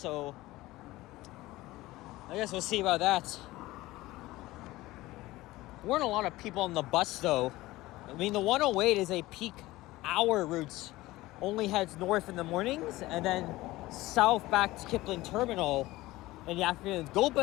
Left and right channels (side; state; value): right; quieter; 18.3 dB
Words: I guess we'll see about that. There weren't a lot of people on the bus, though. I mean, the 108 is a peak hour route. Only heads north in the mornings, and then south back to Kipling Terminal in the afternoon. Go